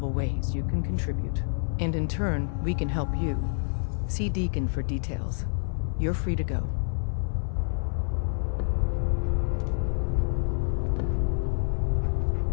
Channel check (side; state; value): right; silent; 57 dB below the other